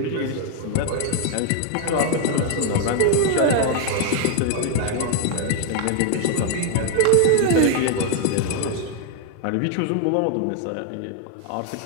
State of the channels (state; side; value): different; both; correlation 0.00